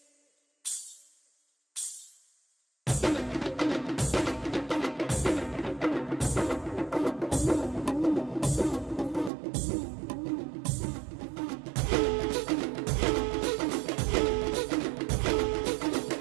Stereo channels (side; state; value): left; drops out; at 9.3 s